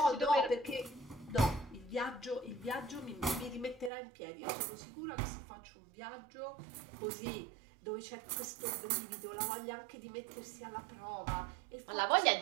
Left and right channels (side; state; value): left; drops out; at 3.9 s